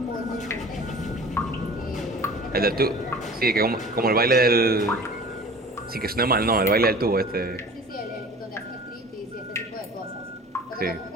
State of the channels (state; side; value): normal; both; correlation 0.42